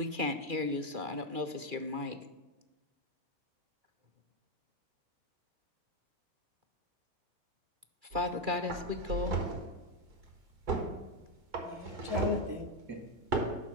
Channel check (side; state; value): left; late; 2.4 ms